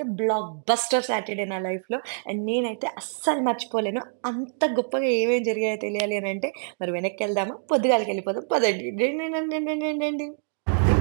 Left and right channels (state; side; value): silent; left; digital silence